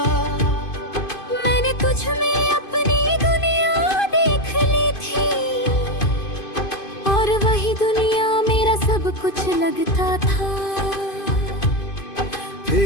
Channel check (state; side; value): late; right; 2.5 ms